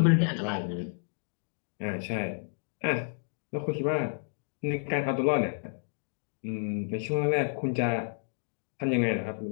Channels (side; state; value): right; silent; digital silence